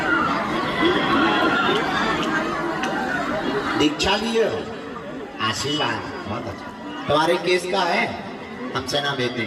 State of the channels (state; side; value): identical; both; correlation 1.00